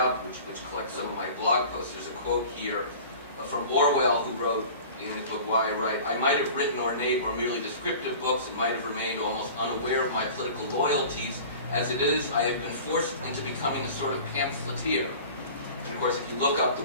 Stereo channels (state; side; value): inverted; both; correlation -0.41